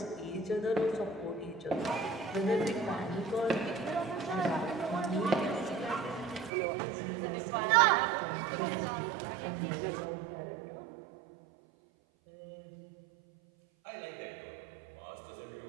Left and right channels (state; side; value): drops out; left; at 6.5 s